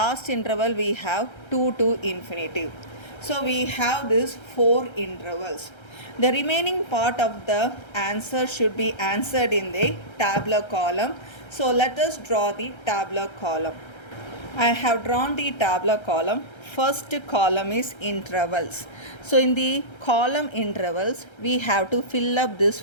interval we have 2 to infinitive. So we have these four intervals. The remaining part of the answer should be answered in the tabular column. So let us draw the tabular column. I have drawn the tabular column. First column is intervals. So in the column intervals, we have to fill up these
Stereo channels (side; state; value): right; late; 1.3 ms